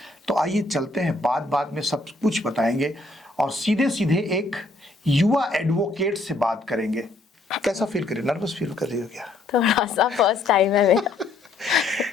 तो आइए चलते हैं, बात में सब कुछ बताएंगे और सीधे सीधे एक युवा एडवोकेट से बात करेंगे। कैसा फील कर रही हो? नर्वस फील कर रही हो क्या? थोड़ा सा, फर्स्ट टाइम है मेरा।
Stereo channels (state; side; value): quieter; right; 3.1 dB